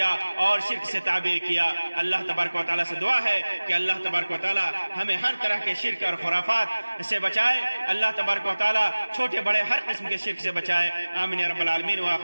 اور شرک سے تعبیر کیا۔ اللہ تبارک و تعالیٰ سے دعا ہے کہ اللہ تبارک و تعالیٰ ہمیں ہر طرح کے شرک اور خرافات سے بچائے، اللہ تبارک و تعالیٰ چھوٹے بڑے ہر قسم کے شرک سے بچائے۔ آمین یا رب العالمین،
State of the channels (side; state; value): both; inverted; correlation -1.00